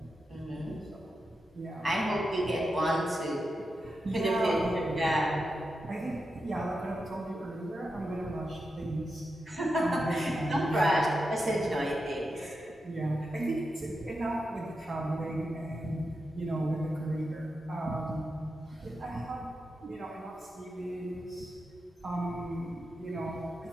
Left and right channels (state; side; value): normal; both; correlation 0.88